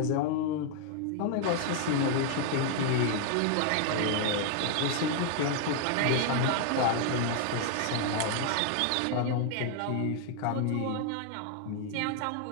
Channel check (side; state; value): both; different; correlation 0.00